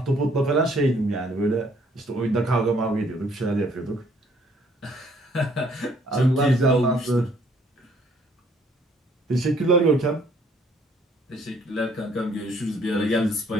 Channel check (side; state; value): both; normal; correlation 0.63